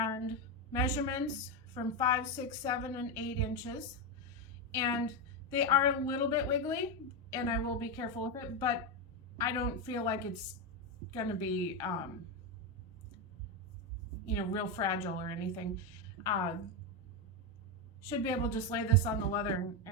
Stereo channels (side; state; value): both; normal; correlation 0.08